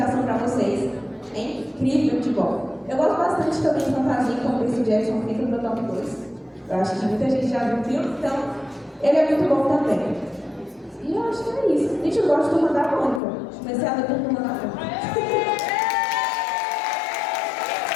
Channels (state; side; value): drops out; right; at 13.2 s